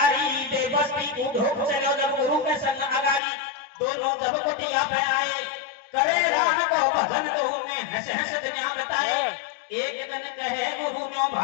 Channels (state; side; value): drops out; right; at 3.2 s